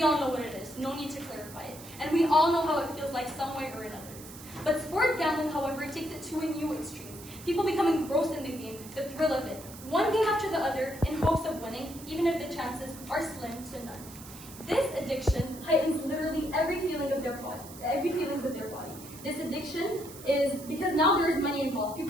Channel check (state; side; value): noise; right; hiss, 16 dB below the sound